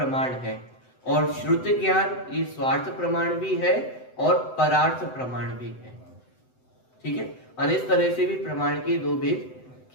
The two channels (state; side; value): late; right; 7.9 ms